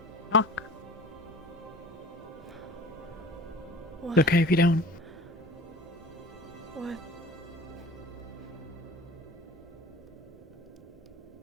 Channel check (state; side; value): normal; both; correlation 0.42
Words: Talk. What? It's okay if you don't. What?